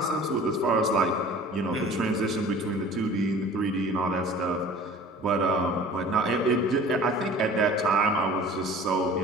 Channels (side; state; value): both; normal; correlation 0.45